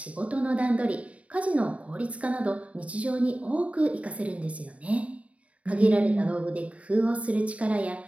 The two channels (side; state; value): left; late; 0.066 ms